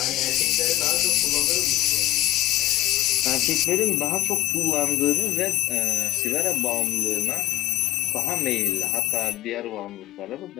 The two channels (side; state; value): right; quieter; 14.9 dB